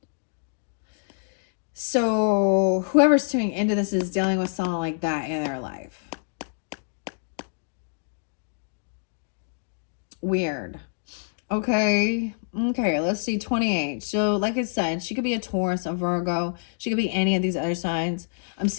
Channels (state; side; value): silent; right; digital silence